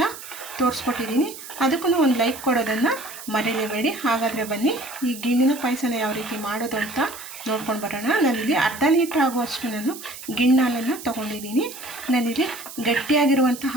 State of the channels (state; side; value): noise; right; hiss, 13 dB below the sound